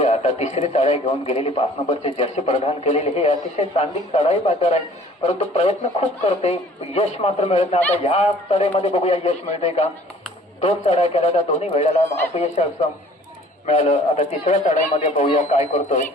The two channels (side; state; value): both; normal; correlation 0.52